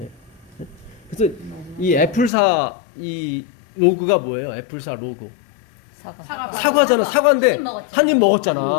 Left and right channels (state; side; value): drops out; right; at 2.3 s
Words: 그래서 이 애플사 이 로고가 뭐예요? 애플사 로고 사과잖아. 사과인데 한 입